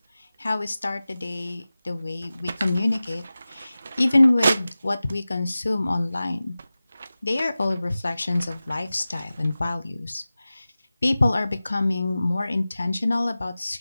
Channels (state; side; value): inverted; both; correlation -0.96